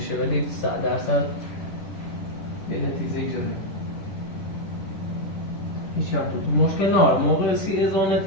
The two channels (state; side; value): late; right; 10 ms